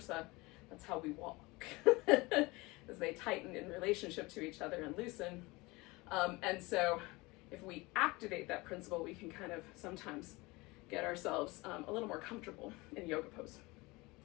That's how we walk, as they tighten in relationship to each other and loosen. And so if we activate that principle, we can kind of sometimes get ourselves a little more comfortable in yoga pose.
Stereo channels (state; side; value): quieter; right; 23.3 dB